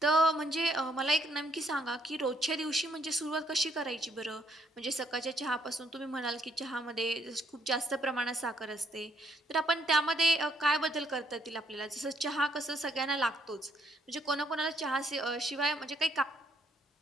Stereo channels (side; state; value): both; normal; correlation 0.69